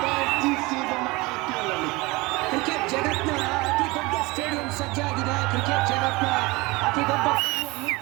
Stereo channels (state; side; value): quieter; left; 23.3 dB